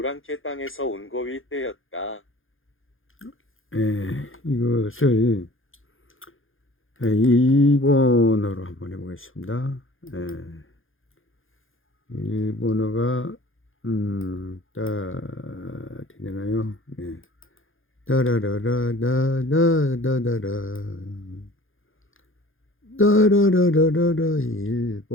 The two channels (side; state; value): right; late; 0.59 ms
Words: 땅에서 온 거위 떼였다. 이것을 일본어로 한번 해보겠습니다. 일본어가 되나요? 따라라라라라라라 따라라라라라